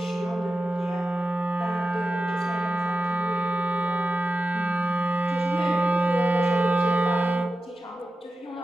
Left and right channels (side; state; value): both; normal; correlation 0.93